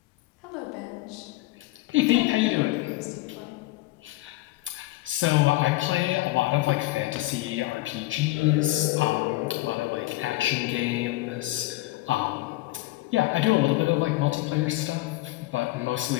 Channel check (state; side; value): quieter; right; 18.7 dB